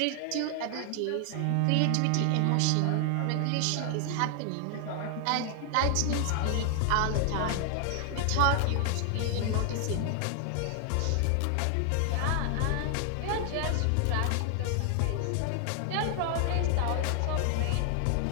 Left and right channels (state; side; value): different; both; correlation 0.00